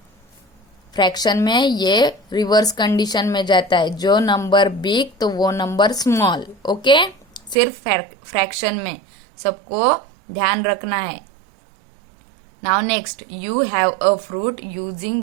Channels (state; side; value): drops out; left; at 7.6 s